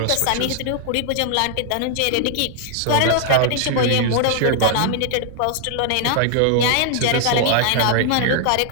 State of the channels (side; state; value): both; different; correlation 0.00